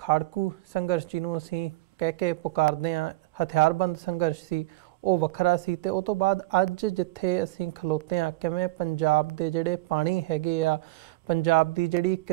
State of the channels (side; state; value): left; quieter; 18.7 dB